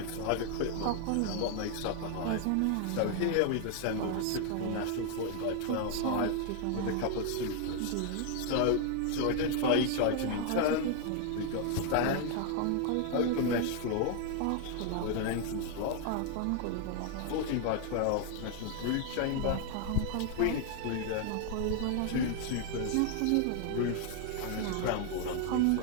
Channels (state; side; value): different; both; correlation 0.00